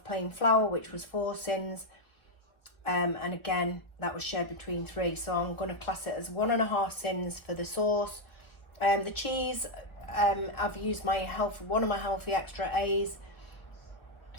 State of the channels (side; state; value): right; late; 1.2 ms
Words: plain flour, which was 4 sins. And again, that was shared between 3. So I'm going to class it as 1.5 sins for the sauce. The cheese, I've used one of my healthy extra A's